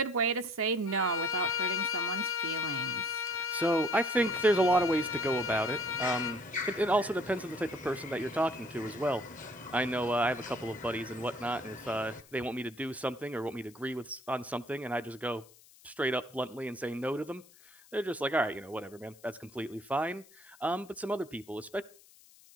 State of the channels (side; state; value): left; noise; hiss, 25 dB below the sound